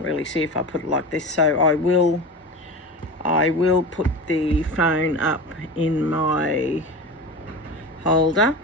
really see if I put it like this, so I will put the phone up in my holder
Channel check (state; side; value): normal; both; correlation 0.28